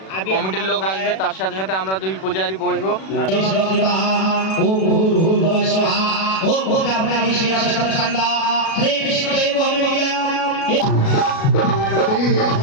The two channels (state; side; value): late; right; 37 ms